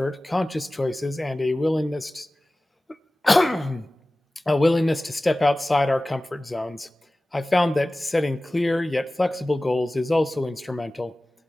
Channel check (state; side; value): normal; both; correlation 0.97